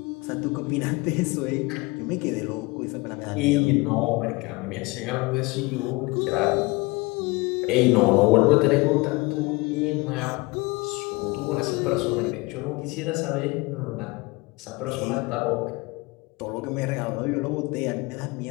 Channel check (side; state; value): right; quieter; 24.2 dB